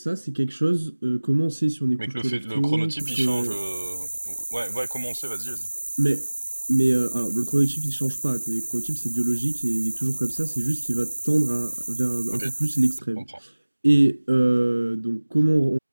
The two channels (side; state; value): both; inverted; correlation -1.00